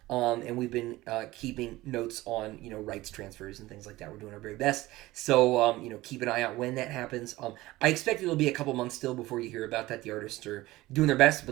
And we've been keeping notes on, rights transfers and things like that. We're doing our very best. So, keep an eye out when that happens. I expect it'll be a couple months still before you hear about that. The artists are doing their best,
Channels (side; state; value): left; quieter; 18.3 dB